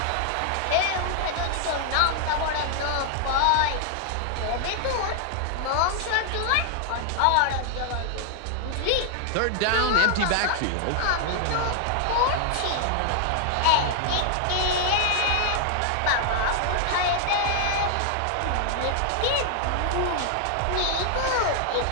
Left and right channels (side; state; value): both; different; correlation 0.00